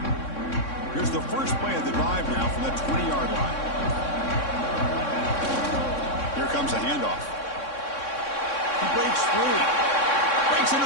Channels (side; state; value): right; late; 3.6 ms